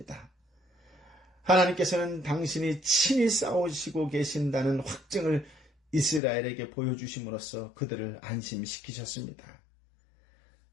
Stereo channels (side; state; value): right; drops out; at 6.2 s